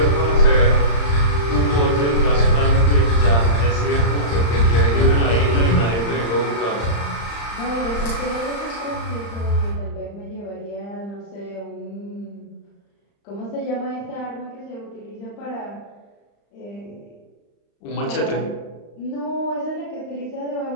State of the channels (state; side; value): late; right; 35 ms